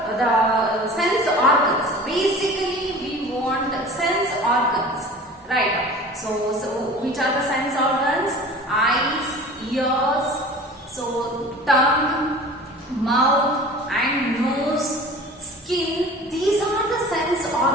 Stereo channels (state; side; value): normal; both; correlation 0.41